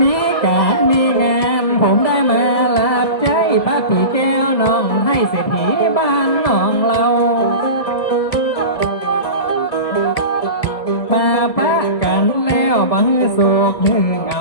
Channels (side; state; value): right; late; 1.7 ms